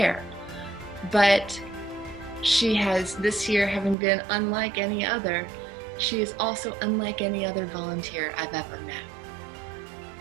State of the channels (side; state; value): left; drops out; at 4.0 s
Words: But she has, this year, having been unlike any other, she is also unlike any other volunteer I've ever met.